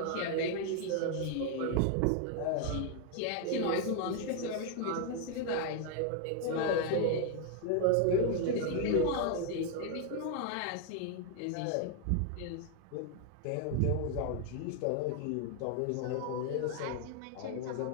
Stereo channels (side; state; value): both; different; correlation 0.00